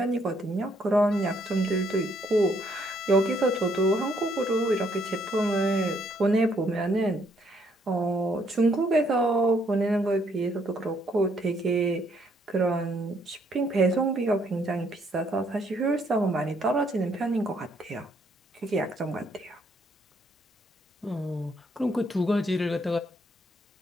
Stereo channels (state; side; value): normal; both; correlation 0.70